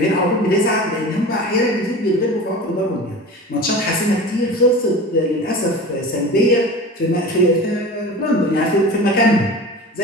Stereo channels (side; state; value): both; normal; correlation 0.34